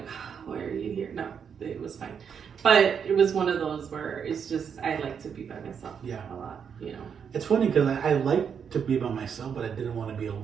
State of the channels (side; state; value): left; quieter; 7.1 dB